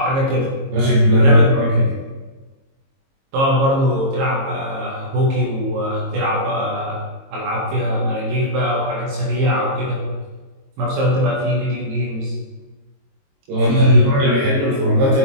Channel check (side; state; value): left; late; 22 ms